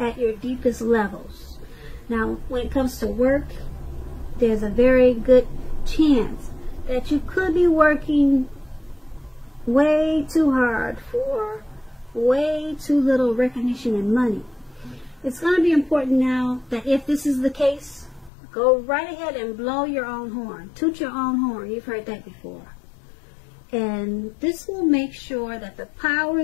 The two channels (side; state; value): right; drops out; at 18.3 s